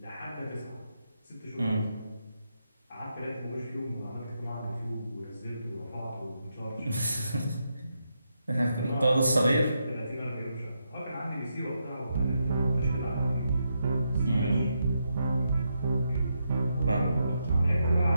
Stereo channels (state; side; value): inverted; both; correlation -0.83